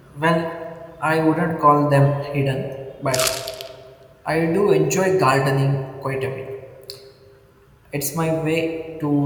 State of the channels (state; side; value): identical; both; correlation 1.00